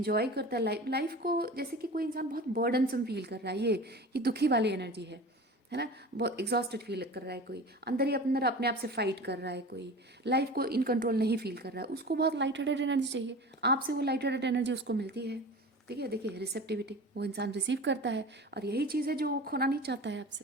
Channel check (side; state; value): both; normal; correlation 0.36